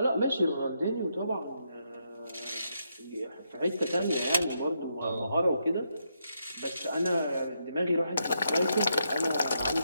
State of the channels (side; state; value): both; inverted; correlation -0.80